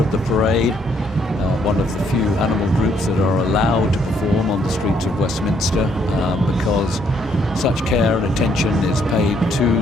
the parade, one of the few animal groups that are allowed to perform on the streets of Westminster because such care and attention is paid to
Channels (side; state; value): both; normal; correlation 0.69